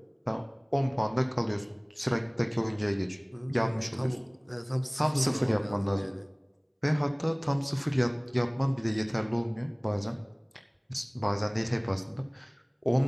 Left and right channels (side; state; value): both; identical; correlation 1.00